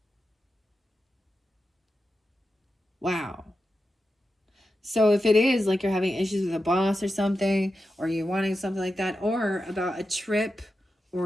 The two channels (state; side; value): normal; both; correlation 0.90